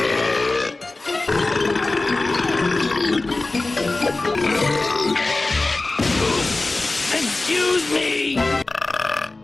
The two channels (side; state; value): right; quieter; 3.2 dB